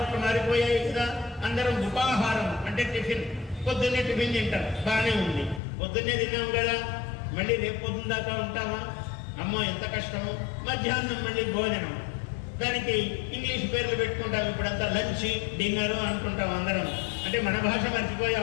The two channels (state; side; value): drops out; right; at 5.6 s